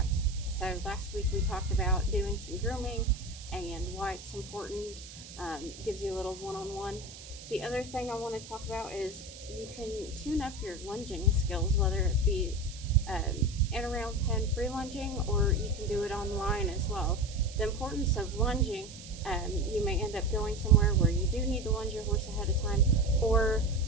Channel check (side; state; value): right; noise; hiss, 15 dB below the sound